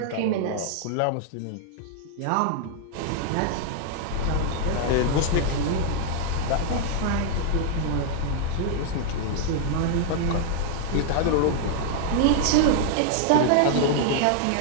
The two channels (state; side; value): different; both; correlation 0.00